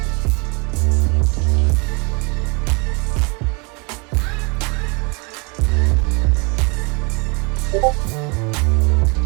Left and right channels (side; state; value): left; quieter; 31.5 dB